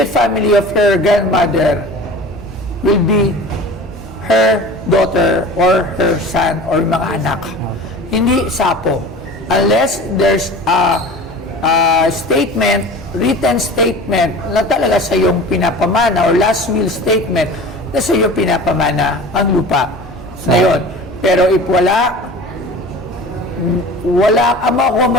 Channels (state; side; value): normal; both; correlation 0.38